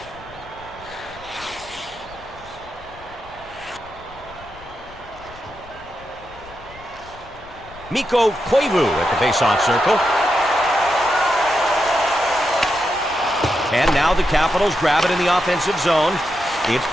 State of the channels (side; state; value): left; noise; rumble, 21 dB below the sound